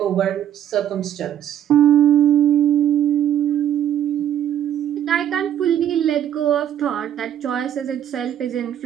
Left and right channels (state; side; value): quieter; left; 10.5 dB